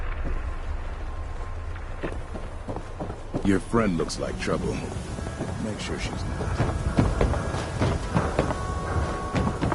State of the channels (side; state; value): both; identical; correlation 1.00